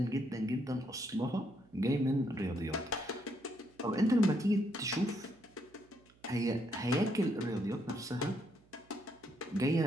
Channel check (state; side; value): noise; right; hum, 29 dB below the sound